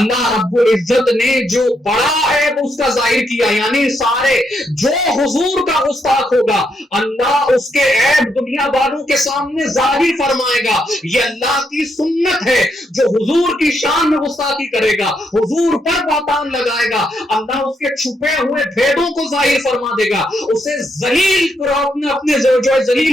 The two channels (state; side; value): normal; both; correlation 0.78